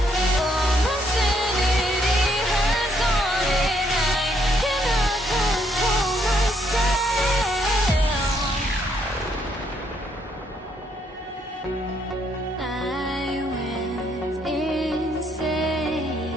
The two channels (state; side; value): normal; both; correlation 0.71